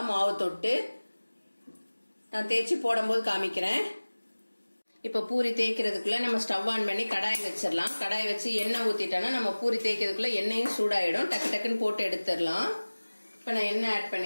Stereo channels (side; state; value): both; inverted; correlation -1.00